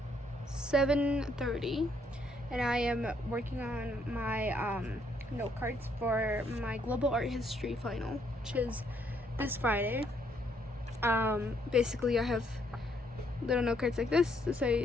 7:30 and I am working on my note cards for my global art history final, which is this Friday. Basically I have little note cards like this to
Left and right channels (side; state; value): both; normal; correlation 0.71